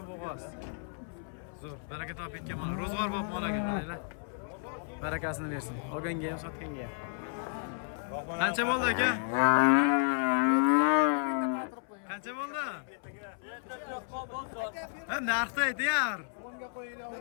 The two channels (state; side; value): silent; right; 56 dB below the other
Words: bo'g'oz. Zo'r, baraka topib ketgan mana. Ro'zg'or bo'lib molaga qaranglar. Barakasini bersin. Olganga ham, sotganga ham. Qancha bo'ldi aka? Qancha bo'ldi? Ha, narxni ayting.